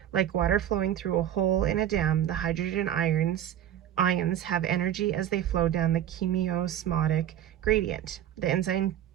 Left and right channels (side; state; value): left; quieter; 10.8 dB